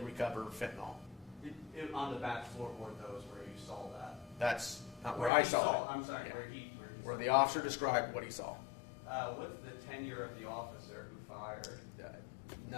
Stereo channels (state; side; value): drops out; right; at 5.3 s